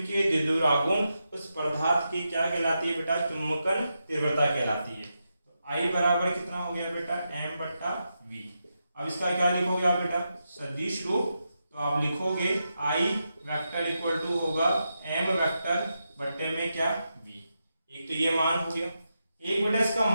द्विध्रुव आघूर्ण उस पदार्थ की क्या कहलाती है बेटा, चुंबकन तीव्रता कहलाती है। तो I बराबर कितना हो गया बेटा, m/v। अब इसका क्या लिखोगे आप बेटा, सदिश रूप, तो आप लिखोगे I वेक्टर इक्वल टू होगा m वेक्टर बट्टे में क्या, v। एक तो ये मान हो गया। एक बेटा इसका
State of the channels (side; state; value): both; inverted; correlation -0.86